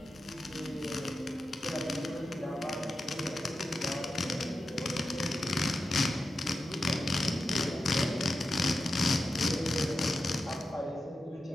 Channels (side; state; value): both; normal; correlation 0.91